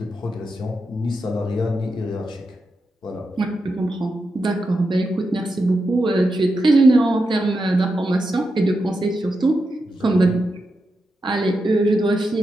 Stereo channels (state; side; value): normal; both; correlation 0.87